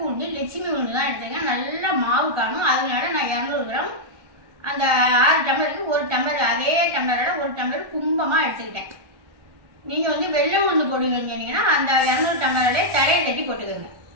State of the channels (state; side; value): late; left; 1.3 ms